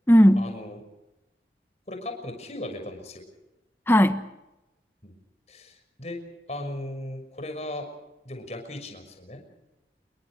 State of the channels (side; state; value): both; normal; correlation 0.92